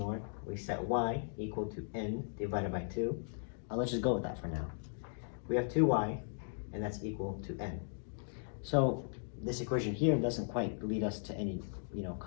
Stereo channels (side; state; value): right; silent; digital silence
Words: We set y equal to n divided by 2. Let's just go with that for now. We have 2y, and that's equal to n. So this equation here doesn't quite lead us to any